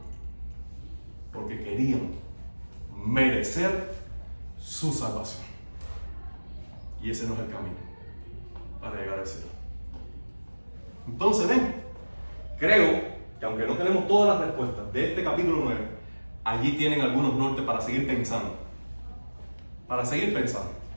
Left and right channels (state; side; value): inverted; both; correlation -1.00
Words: Porque querían merecer su salvación. Y ese no es el camino para llegar al cielo. Entonces, ven, creo que aunque no tenemos todas las respuestas de este capítulo 9, allí tienen algunos nortes para seguir pensando. Para seguir pensando.